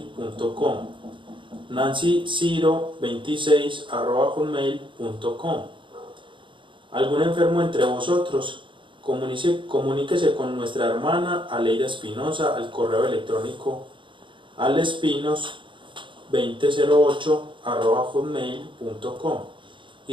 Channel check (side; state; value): left; late; 0.24 ms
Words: nancyciro26@hotmail.com. ¿Algún enfermo entre vosotros? Comuníquese con nuestra hermana Aleida Espinosa al correo electrónico alespinos2008@hotmail.com